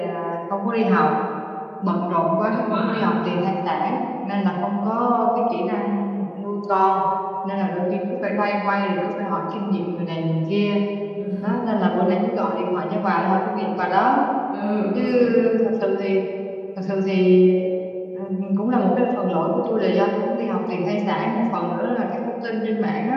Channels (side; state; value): both; identical; correlation 1.00